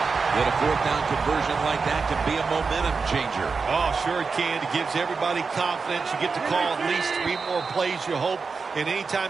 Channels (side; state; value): left; quieter; 4.8 dB